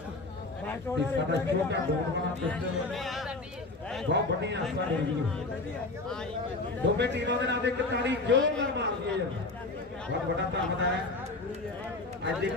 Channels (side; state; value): right; quieter; 3.2 dB